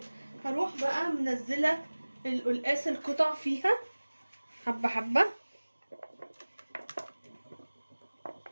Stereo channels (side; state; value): both; inverted; correlation -1.00